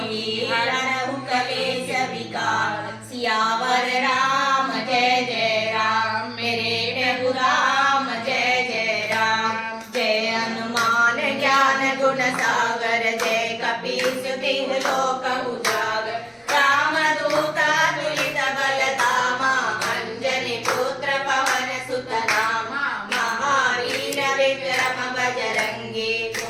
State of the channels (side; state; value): both; identical; correlation 1.00